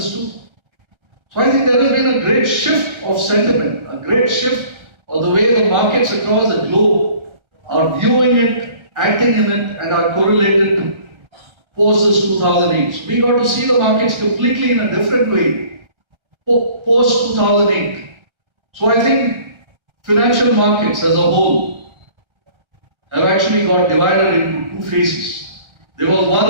too. So I think there has been a great shift of sentiment, a great shift of the way the markets across the globe are viewing it, acting in it, and are correlated post this 2008. So we got to see the markets completely in a different way post 2008. So I think financial markets as a whole have actually got divided into two phases. There was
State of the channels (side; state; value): left; late; 1.3 ms